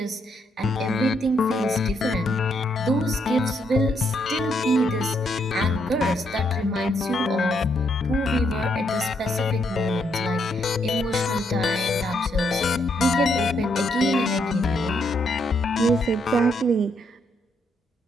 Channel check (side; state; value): both; normal; correlation 0.75